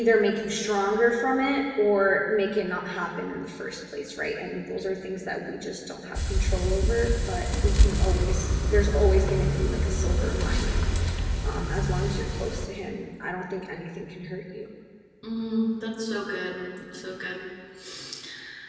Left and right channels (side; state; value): both; identical; correlation 1.00